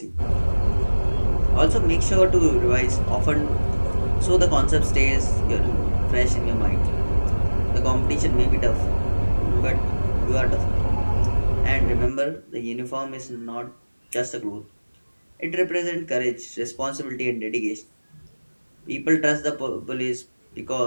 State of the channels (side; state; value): both; inverted; correlation -1.00